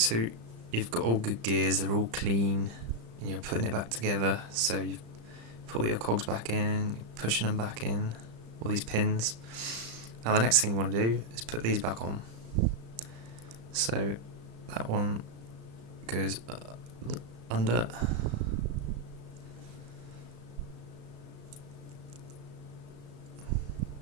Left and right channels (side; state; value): left; late; 35 ms